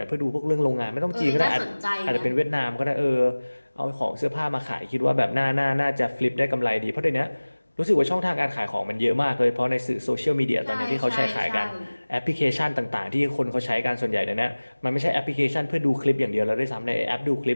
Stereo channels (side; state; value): both; inverted; correlation -1.00